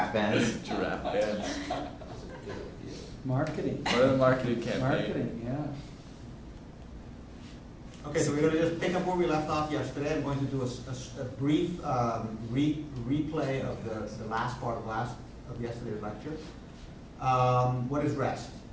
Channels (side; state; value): both; identical; correlation 1.00